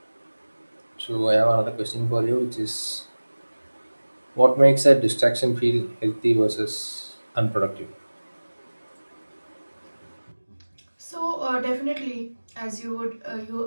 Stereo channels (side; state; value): both; inverted; correlation -1.00